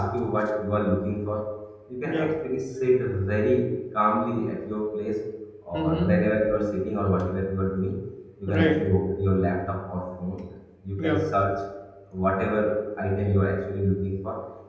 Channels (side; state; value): both; identical; correlation 1.00